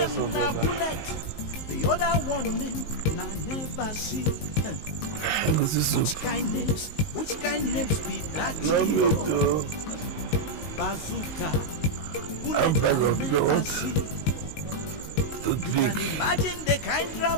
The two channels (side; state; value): right; late; 19 ms